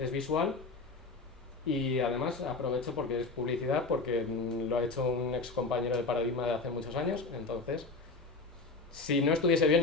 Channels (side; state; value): right; quieter; 3.7 dB